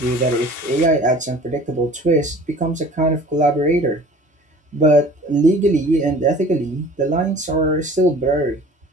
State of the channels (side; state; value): both; normal; correlation 0.46